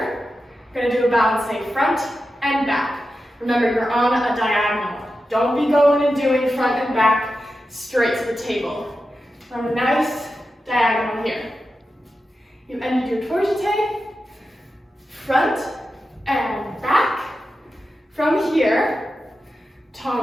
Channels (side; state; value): both; normal; correlation 0.91